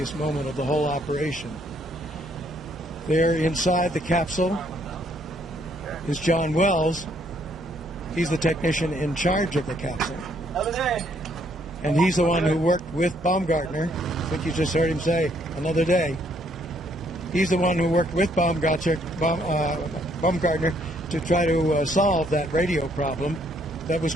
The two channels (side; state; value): both; normal; correlation 0.68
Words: moment of the whole operation. There inside the capsule is John Wells. He's the technician in charge of the capsule. And he's the one who worked with Baumgartner. I think you just heard him say, another day. He's the one who worked with Baumgartner to try to solve that radio problem that was